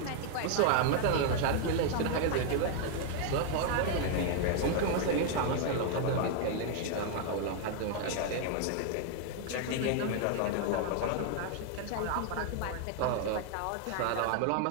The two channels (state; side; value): different; both; correlation 0.00